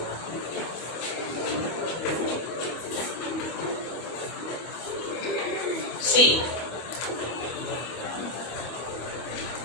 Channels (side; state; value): right; late; 25 ms